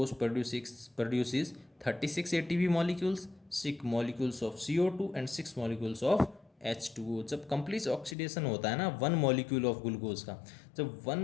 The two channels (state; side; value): drops out; right; at 8.2 s